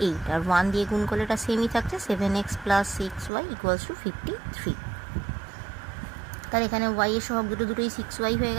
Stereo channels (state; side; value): drops out; left; at 3.3 s